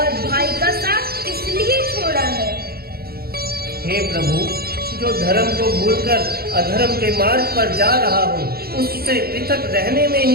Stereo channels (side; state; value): left; late; 0.45 ms